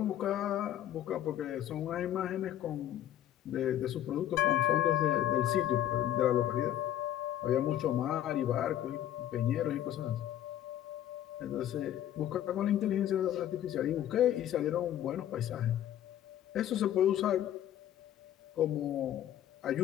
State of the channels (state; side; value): quieter; right; 11.6 dB